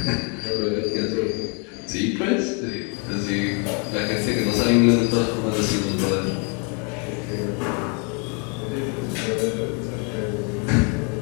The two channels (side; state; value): right; quieter; 35.9 dB